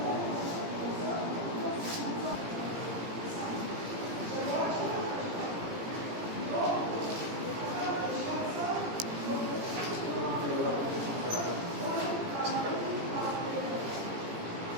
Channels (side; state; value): left; late; 17 ms